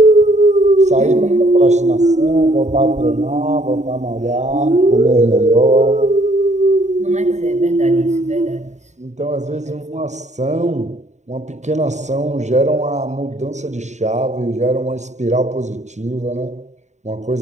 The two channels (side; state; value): left; late; 0.34 ms